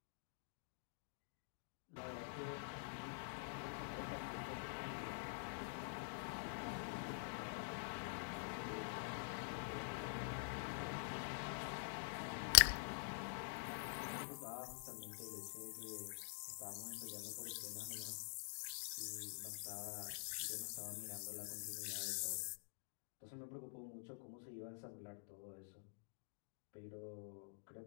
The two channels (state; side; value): silent; right; digital silence